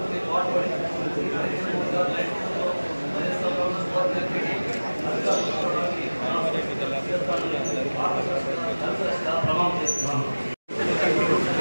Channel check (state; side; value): inverted; both; correlation -1.00